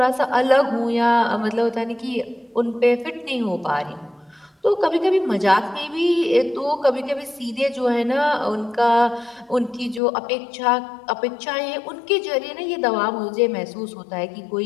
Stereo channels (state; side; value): drops out; right; at 10.0 s